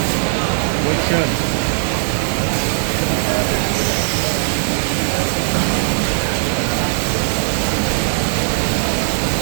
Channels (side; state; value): left; silent; digital silence